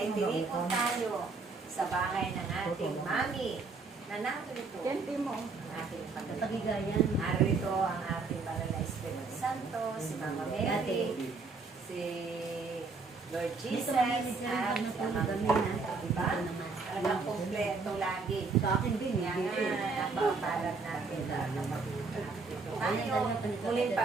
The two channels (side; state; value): left; quieter; 4.2 dB